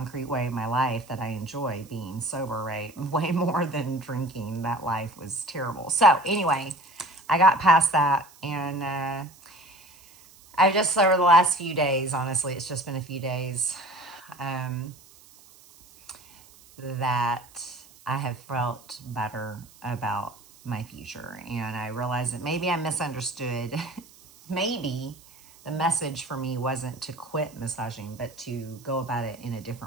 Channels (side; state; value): right; noise; hiss, 25 dB below the sound